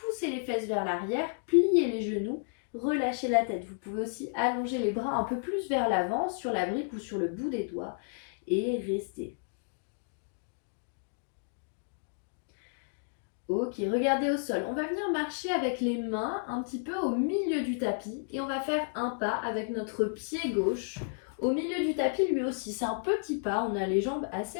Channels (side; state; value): right; silent; digital silence